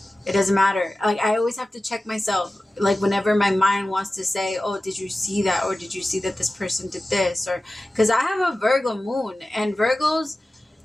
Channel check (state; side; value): normal; both; correlation 0.95